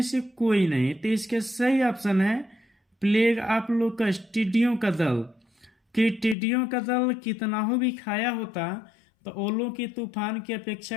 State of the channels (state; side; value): drops out; right; at 6.4 s